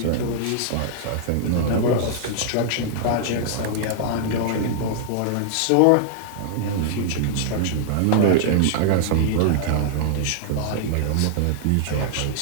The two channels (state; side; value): different; both; correlation -0.01